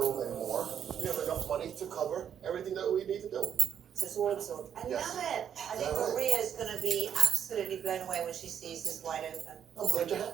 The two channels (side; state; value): left; quieter; 8.8 dB